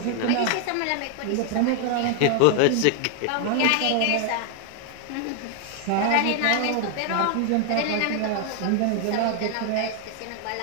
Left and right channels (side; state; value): both; different; correlation 0.00